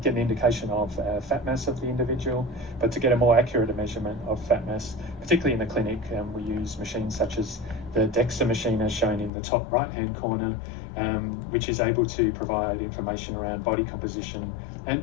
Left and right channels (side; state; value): right; drops out; at 9.3 s